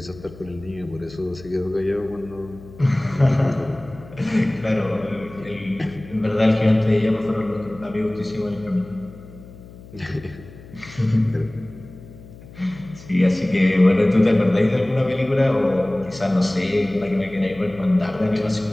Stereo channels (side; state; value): left; noise; hum, 19 dB below the sound